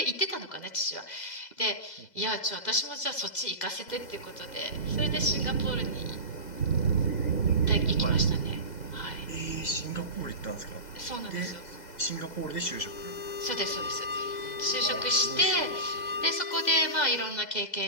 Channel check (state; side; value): late; right; 2.0 ms